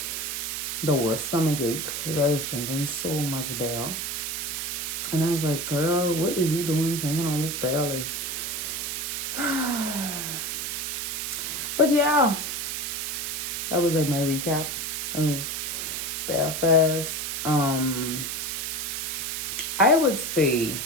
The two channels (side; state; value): right; noise; hiss, 3 dB below the sound